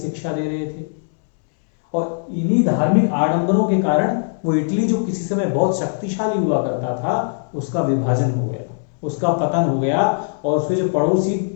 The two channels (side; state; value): right; silent; 66 dB below the other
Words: दे रहे थे। और इन्हीं धार्मिक आडंबरों के कारण वो इटली जो किसी समय बहुत शक्तिशाली हुआ करता था, उसका विभाजन हो गया, उसका पतन हो गया, और उसके जो पड़ोसी